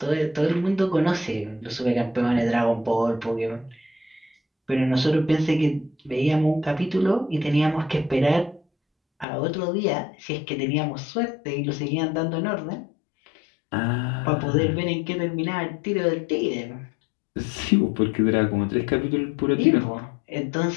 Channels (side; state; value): right; drops out; at 9.2 s